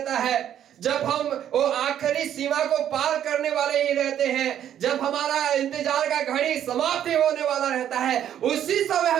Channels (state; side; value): quieter; left; 10.4 dB